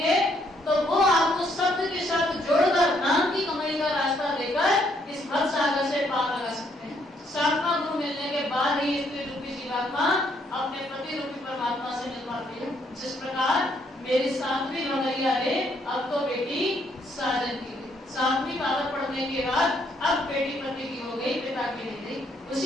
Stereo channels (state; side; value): normal; both; correlation 0.70